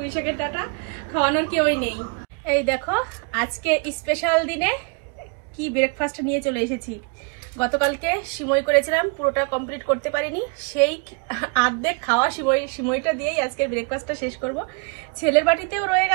ডাটা খাওয়ানোর কেউই নেই। এই দেখো আজকে স্পেশাল দিনে কি ব্রেকফাস্ট নিয়ে চলে এসেছি। গতকালকে সিমই করেছিলাম, পুরোটা কমপ্লিট করতে পারিনি, সেই আর্ধেক খাওয়া সিমইটা দিয়েই আজকের ব্রেকফাস্টটা শেষ করব। ছেলের বাটিতেও রয়ে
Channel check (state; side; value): quieter; left; 33.1 dB